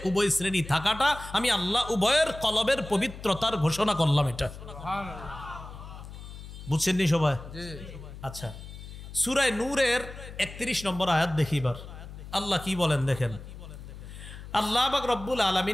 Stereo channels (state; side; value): noise; left; hum, 13 dB below the sound